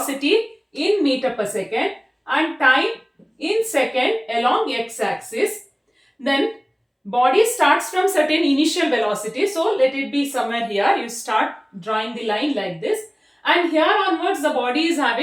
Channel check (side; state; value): both; identical; correlation 1.00